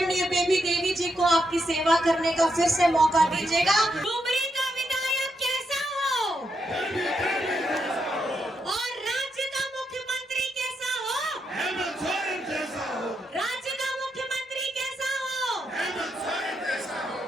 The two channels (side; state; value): both; normal; correlation 0.81